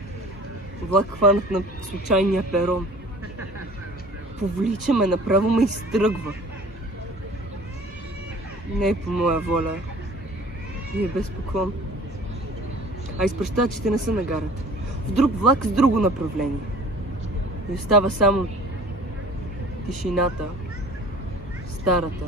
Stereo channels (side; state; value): both; normal; correlation 0.46